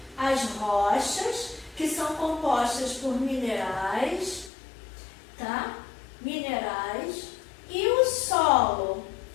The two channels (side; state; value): right; drops out; at 4.5 s